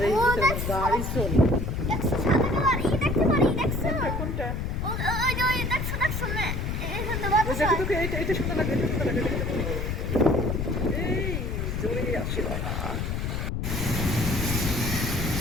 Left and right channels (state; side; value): noise; left; rumble, 2 dB below the sound